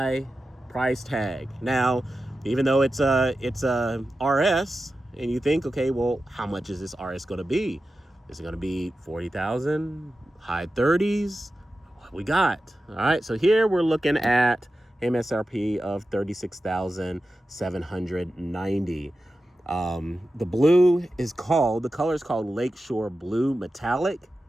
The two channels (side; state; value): both; normal; correlation 0.92